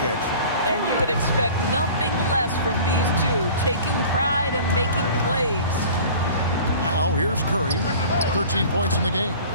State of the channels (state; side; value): inverted; both; correlation -0.43